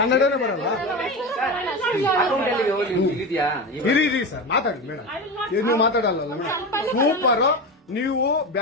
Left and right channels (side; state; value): both; normal; correlation 0.22